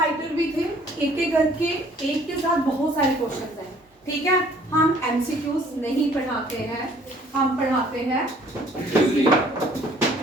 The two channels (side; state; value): both; normal; correlation 0.58